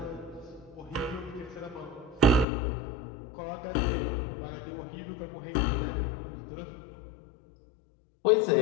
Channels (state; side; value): drops out; right; at 2.5 s